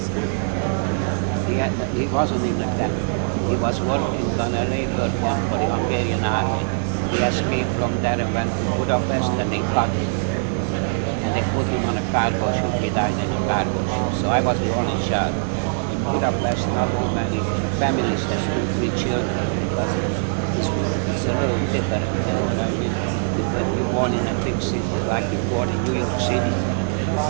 He wasn't in the camp. He was working on a labor camp for the Hungarian army. He escaped from there and went to Budapest, and they caught him. And they put him on a cargo ship. He died in a cargo ship. So I was the only child. In Budapest, not too many families have 2-3 children. Because it's a little different, you know what I mean? When you're born in a big city, like you're born in New York City,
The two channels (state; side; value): silent; left; digital silence